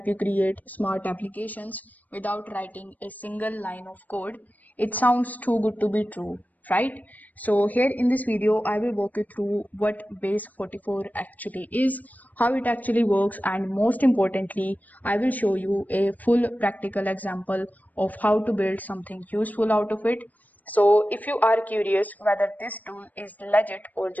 you create smart applications without writing a single line of code. It sounds too good to be true, right? So here in this video, I will walk you through what Base44 actually is, how it actually works, and most importantly, I will show you a full practical example of how to build something useful out of it. So if you are curious whether this tool is legit or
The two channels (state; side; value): late; right; 0.080 ms